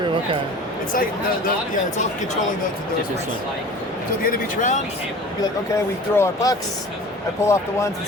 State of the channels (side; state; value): both; normal; correlation 0.41